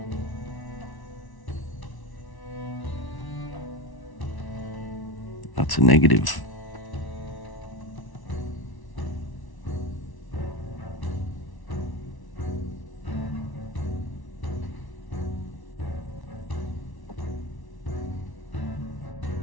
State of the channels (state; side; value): late; right; 1.1 ms